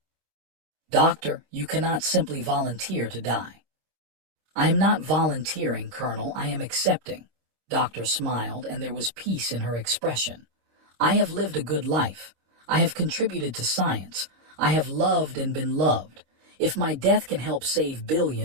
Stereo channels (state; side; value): late; left; 26 ms